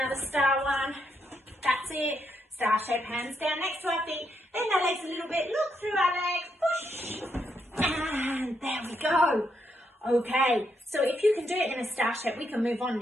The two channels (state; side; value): normal; both; correlation 0.79